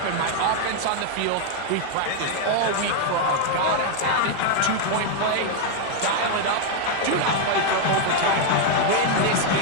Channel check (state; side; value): different; both; correlation 0.00